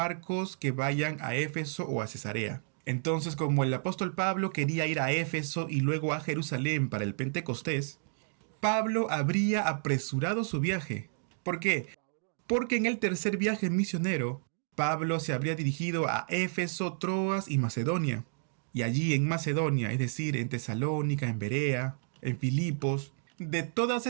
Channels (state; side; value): silent; left; digital silence